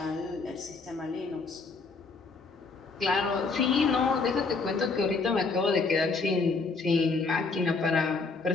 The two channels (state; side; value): quieter; right; 4.2 dB